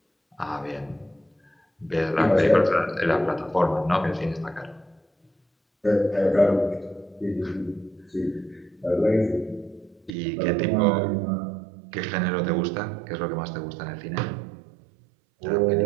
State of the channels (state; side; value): drops out; left; at 10.1 s